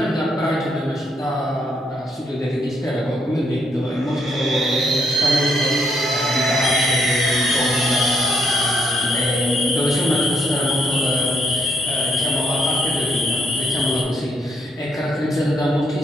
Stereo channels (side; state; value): both; normal; correlation 0.74